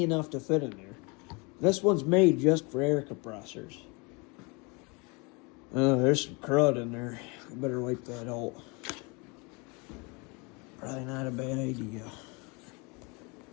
enough to fit in there. This one's made just for air compressors. Oh, there's some crud in there. I better wipe that out. Probably not a bad idea.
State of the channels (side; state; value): right; quieter; 29.6 dB